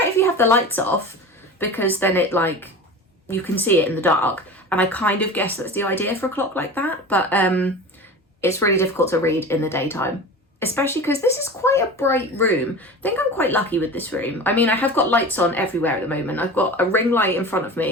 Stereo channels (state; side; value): normal; both; correlation 0.33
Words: if you have the lights off, because then it you can see it in the dark, and I kind of guess that's the idea for a clock like that, but it's really difficult to read in the daytime, especially because this is quite a bright room. I think I'm quite lucky with this room. I mean, I have got lights on everywhere at the moment. I've got a ring light in front of